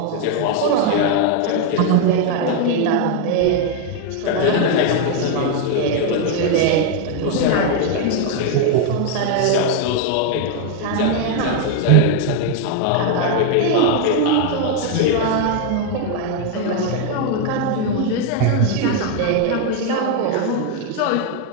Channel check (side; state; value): both; different; correlation 0.00